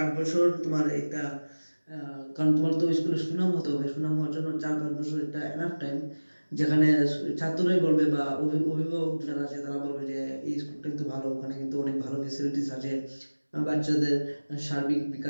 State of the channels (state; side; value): inverted; both; correlation -1.00